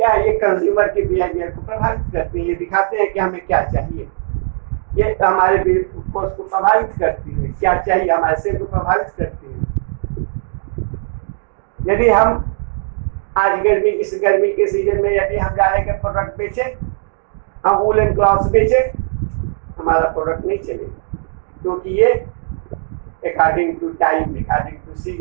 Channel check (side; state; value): left; silent; digital silence